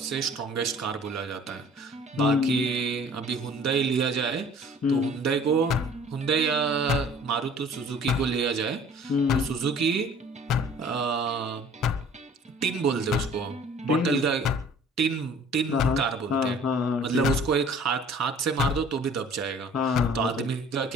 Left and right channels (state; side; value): normal; both; correlation 0.51